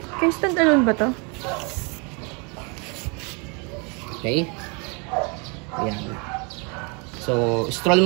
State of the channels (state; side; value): quieter; left; 32.7 dB